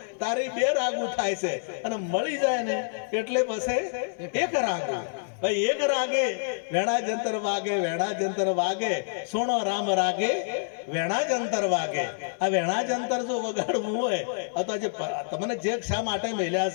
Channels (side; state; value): right; silent; digital silence